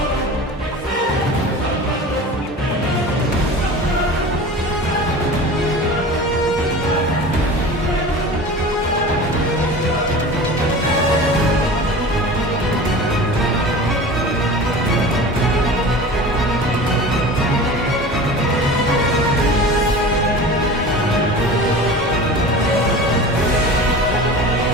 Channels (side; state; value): both; normal; correlation 0.36